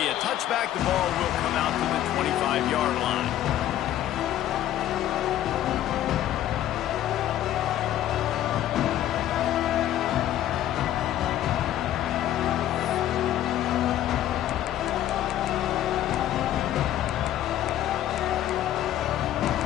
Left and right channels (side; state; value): right; quieter; 12.4 dB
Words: a touchback. The ball will come out to the 25-yard line.